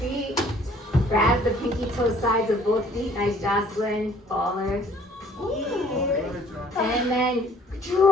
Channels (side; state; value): both; normal; correlation 0.57